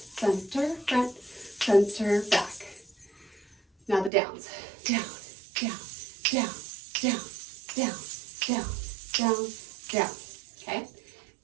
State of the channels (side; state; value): left; drops out; at 4.1 s